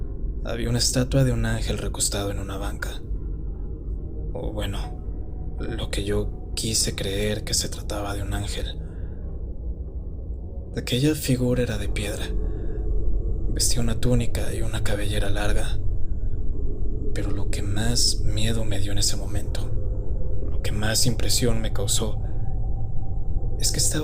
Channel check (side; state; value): both; identical; correlation 1.00